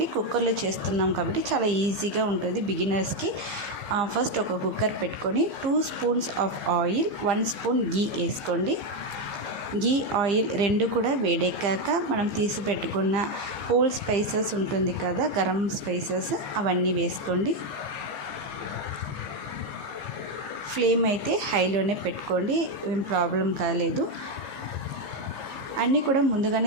కుక్కర్లో చేస్తున్నాం కాబట్టి చాలా ఈజీగా ఉంటుంది బిగినర్స్కి. ఫస్ట్ ఒక కుక్కర్ పెట్టుకొని 2 స్పూన్స్ ఆఫ్ ఆయిల్, 1 స్పూన్ గీ వేసుకోండి. గీ, ఆయిల్ రెండు కూడా వేడెక్కాక మనం తీసి పెట్టుకున్న హోల్ స్పైసెస్ ఉంటుంది కదా, గరం స్పైసెస్, అవన్నీ వేసుకోండి. ఫ్లేమ్ అయితే హైలోనే పెట్టుకోండి, ఏం ప్రాబ్లం కాలేదు. అన్నీ కూడా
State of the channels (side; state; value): left; late; 15 ms